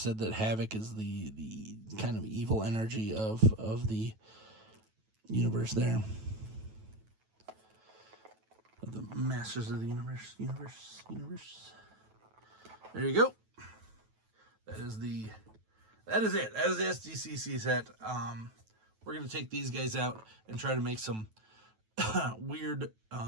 said that Havoc is the kind of evil energy of the universe there. Of the Masters of the Universe. There you go. That is it. That is the SDCC set. We're going to take these guys out and try to make some weird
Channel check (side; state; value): left; late; 9.2 ms